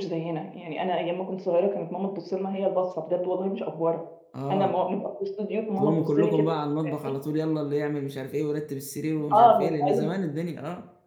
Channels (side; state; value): both; identical; correlation 1.00